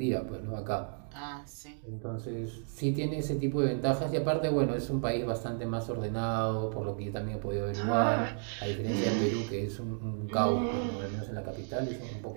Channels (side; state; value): left; silent; 56 dB below the other